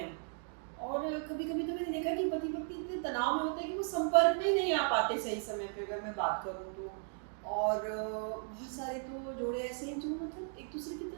और कभी कभी तो मैंने देखा कि पति पत्नी इतने तनाव में होते हैं कि वो संपर्क में ही नहीं आ पाते सही समय पे, अगर मैं बात करूँ तो। और बहुत सारे तो जोड़े ऐसे हैं जो मतलब एक दूसरे की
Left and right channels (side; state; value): left; silent; 54 dB below the other